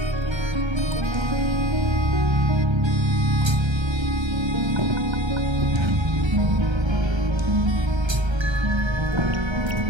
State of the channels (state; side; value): late; left; 1.3 ms